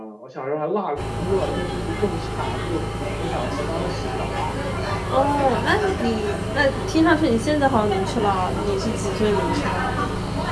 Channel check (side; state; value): both; identical; correlation 1.00